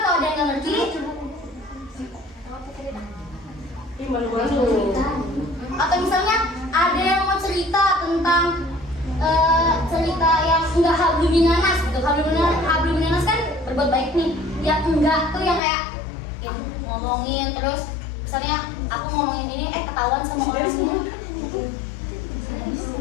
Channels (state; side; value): drops out; right; at 15.6 s